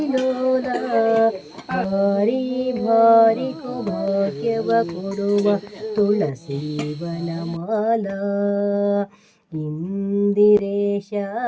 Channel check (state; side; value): identical; both; correlation 1.00